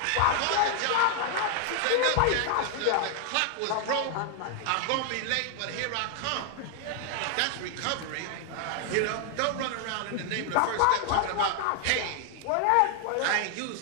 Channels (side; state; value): both; different; correlation 0.00